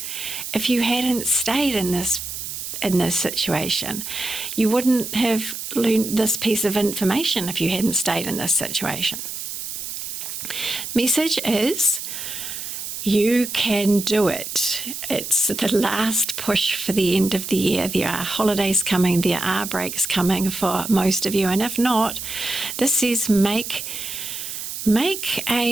if you hadn't stayed in this situation. You wouldn't have learned this piece of information if you hadn't stayed in this situation. Message is, you can do it. It's the last push for the end of the year. There are holidays coming, there are breaks coming for most of you, and if not, this says make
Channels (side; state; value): right; noise; hiss, 7 dB below the sound